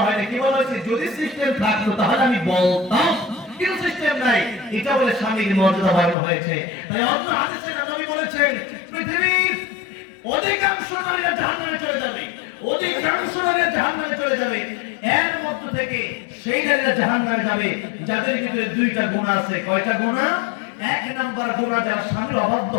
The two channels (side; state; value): right; drops out; at 6.2 s